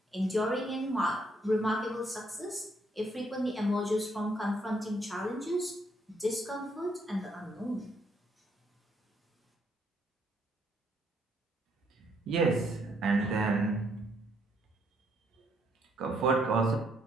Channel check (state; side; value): normal; both; correlation 0.72